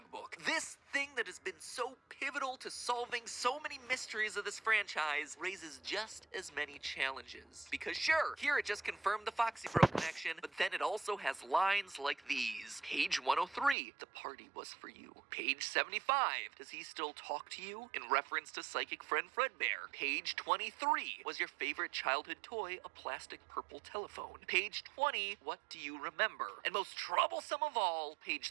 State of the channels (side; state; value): left; drops out; at 13.8 s